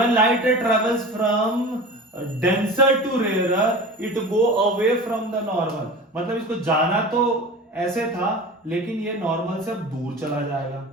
light ray travels from denser to rarer it go away from the normal. मतलब इसको जाना तो ऐसे था लेकिन ये नॉर्मल से अब दूर चला जाएगा।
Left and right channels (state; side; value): normal; both; correlation 0.35